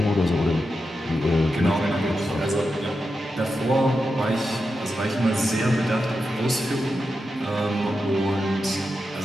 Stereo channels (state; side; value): normal; both; correlation 0.89